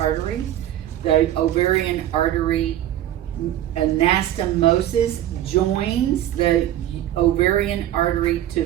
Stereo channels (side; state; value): left; quieter; 12.5 dB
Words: The ovarian artery anastomosis joins the ovarian artery to